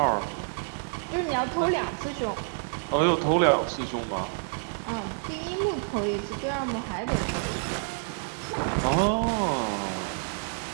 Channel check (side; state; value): left; silent; 59 dB below the other